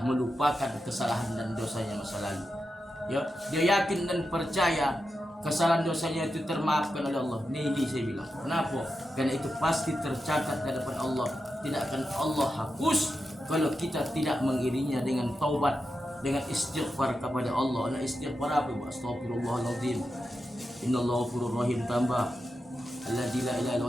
melupakan kesalahan dan dosanya masa lalu. Ya, dia yakin dan percaya kesalahan dosanya itu termaafkan oleh Allah. Ini saya bilang. Kenapa? Karena itu pasti tercatat di hadapan Allah. Tidak akan Allah hapus kalau kita tidak mengiringinya dengan taubat, dengan istighfar kepada Allah. Nah, istighfar apa? Astagfirullahaladzim. Innallaha ghafurur rahim, tambah alladzi la ilaha illa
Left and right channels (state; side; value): normal; both; correlation 0.89